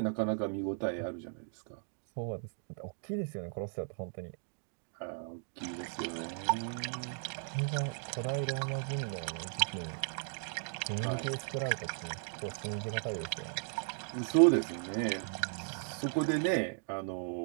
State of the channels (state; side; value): silent; left; 54 dB below the other